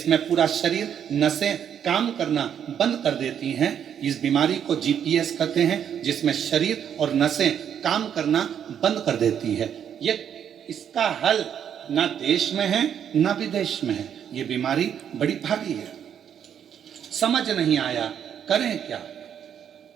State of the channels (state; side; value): quieter; left; 8.8 dB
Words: पूरा शरीर नसें काम करना बंद कर देती हैं। इस बीमारी को जीपीएस कहते हैं, जिसमें शरीर और नसें काम करना बंद कर देती है। ये इसका हल ना देश में है ना विदेश में है। ये बीमारी बड़ी भारी है, समझ नहीं आया करें क्या।